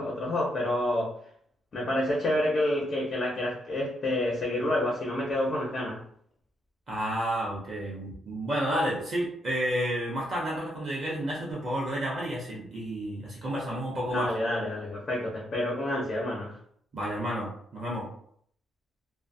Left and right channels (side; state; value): both; normal; correlation 0.77